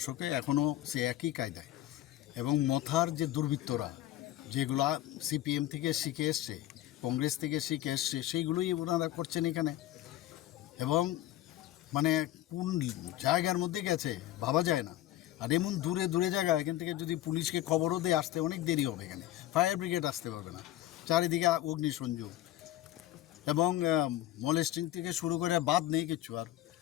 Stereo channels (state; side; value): quieter; right; 14.2 dB